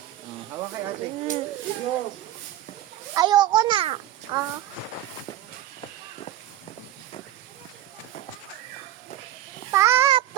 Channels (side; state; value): left; quieter; 12.8 dB